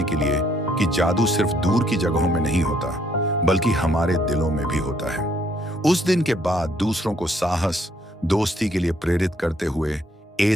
के लिए कि जादू सिर्फ दूर की जगहों में नहीं होता, बल्कि हमारे दिलों में भी होता है। उस दिन के बाद दूसरों को साहस, दोस्ती के लिए प्रेरित करते हुए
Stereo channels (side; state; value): both; normal; correlation 0.68